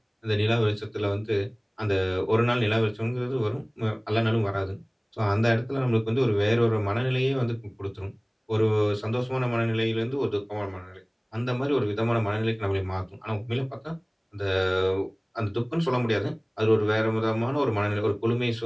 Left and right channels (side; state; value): both; identical; correlation 1.00